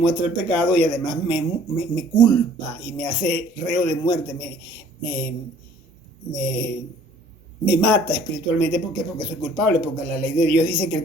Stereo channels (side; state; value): both; normal; correlation 0.55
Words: el pecado y además me culpa y me hace reo de muerte, me, me, me mata espiritualmente. ¿Por qué? Porque soy culpable, porque la ley de Dios dice que el